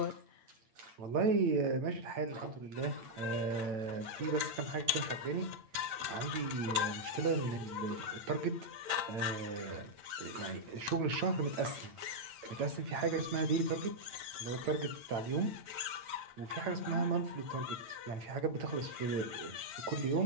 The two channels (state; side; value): late; left; 8.9 ms